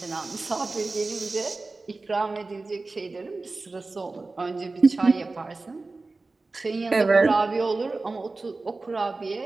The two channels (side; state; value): left; quieter; 3.5 dB